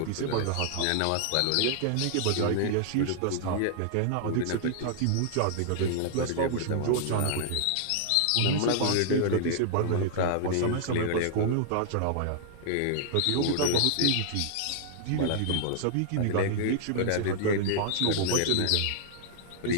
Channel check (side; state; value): both; different; correlation -0.01